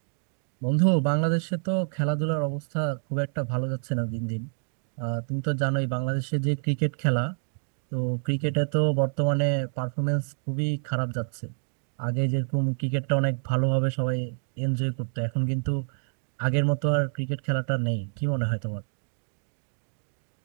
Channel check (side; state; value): left; silent; digital silence